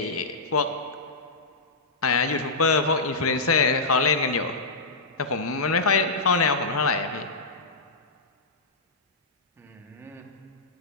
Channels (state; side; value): quieter; right; 3.6 dB